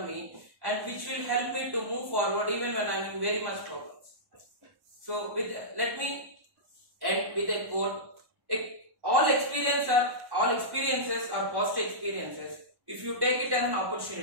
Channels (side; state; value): left; late; 1.1 ms